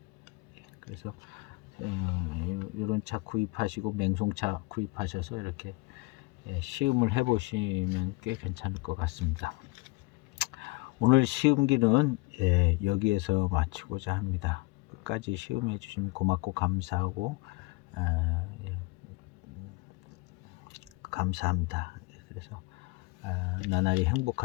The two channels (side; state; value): right; quieter; 23.9 dB